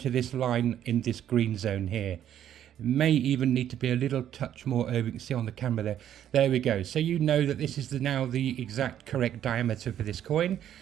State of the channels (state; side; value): quieter; left; 10.6 dB